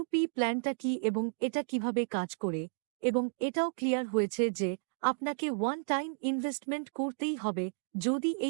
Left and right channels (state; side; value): silent; left; digital silence